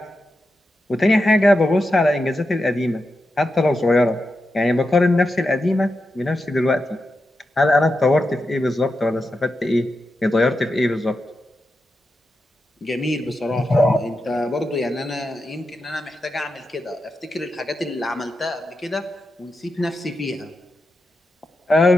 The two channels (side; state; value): both; normal; correlation 0.88